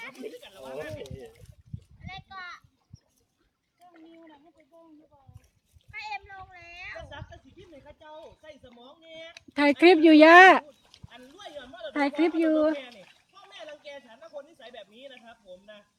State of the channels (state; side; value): identical; both; correlation 1.00